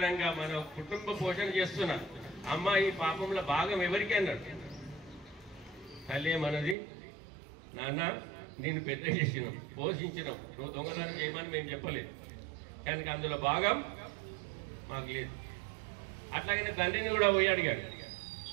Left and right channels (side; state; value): left; drops out; at 6.8 s